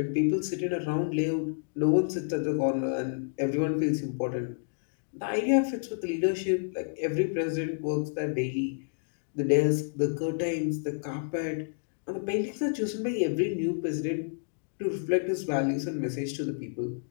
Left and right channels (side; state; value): right; silent; digital silence